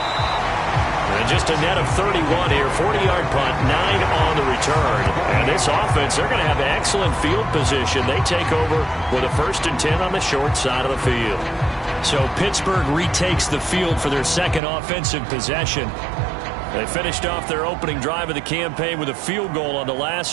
And just a net of 31 here. 40-yard punt, 9 on the return. And this offense, they're going to have excellent field position. They take over with a 1st and 10 on the short side of the field. So Pittsburgh retakes the field for their second offensive possession. They finished off their opening drive of the campaign with a field goal on the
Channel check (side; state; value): left; drops out; at 14.6 s